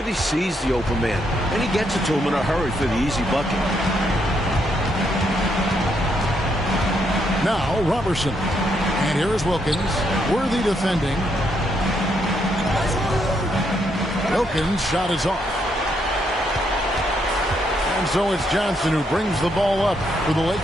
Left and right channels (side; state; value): both; normal; correlation 0.76